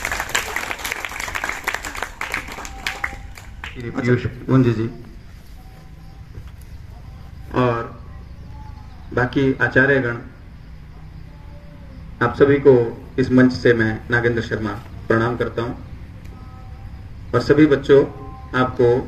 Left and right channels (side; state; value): both; identical; correlation 1.00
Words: पीयूष गुंजी जी और बाकी आचार्यगण, आप सभी को इस मंच से मैं नागेंद्र शर्मा प्रणाम करता हूं और सभी बच्चों आपको